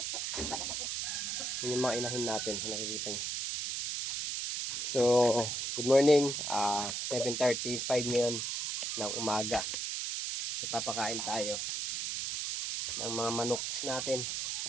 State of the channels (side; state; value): right; noise; hiss, 2 dB below the sound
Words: Yun yung mga inahin natin. Nakikita nyo. So, good morning. 7:35 ngayon ng umaga. Papakain tayo ng mga manok natin.